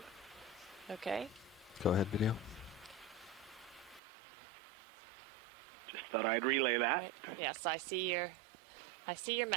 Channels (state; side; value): drops out; left; at 4.0 s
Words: But Okay. Go ahead, video. just thought I'd relay that. Right. Yes, I see your